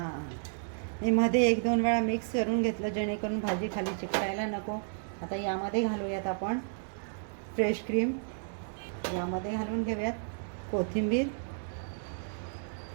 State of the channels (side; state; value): left; silent; digital silence